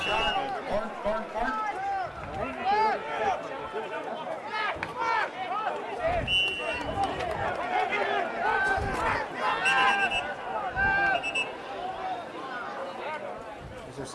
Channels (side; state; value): both; identical; correlation 1.00